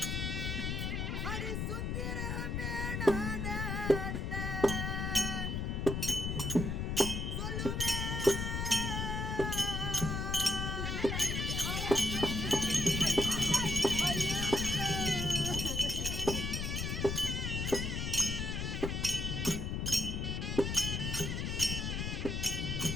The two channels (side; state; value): left; noise; rumble, 1 dB below the sound